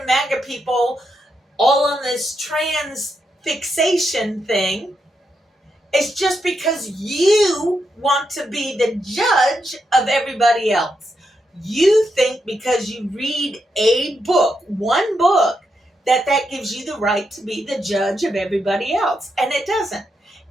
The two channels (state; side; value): normal; both; correlation 0.83